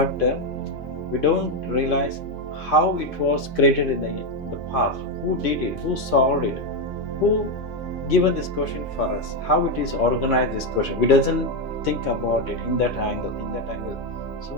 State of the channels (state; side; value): normal; both; correlation 0.06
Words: we don't realize how it was created in the past. Who did it? Who solved it? Who given this question for us? How it is organized, this question? We doesn't think about it in that angle.